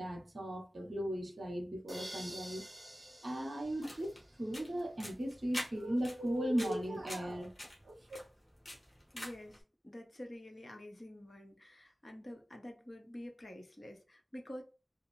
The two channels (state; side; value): normal; both; correlation 0.95